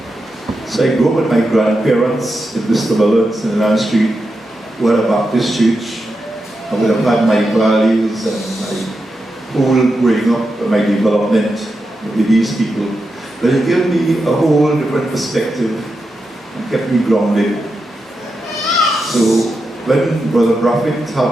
So I grew up with my grandparents in Mr. Mullins in Land Street, who had a Baptist church. I would have had my values and my whole growing up and my development with these people. But it gave me a whole different perspective and kept me grounded. So when Brother Prophet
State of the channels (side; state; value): both; normal; correlation 0.88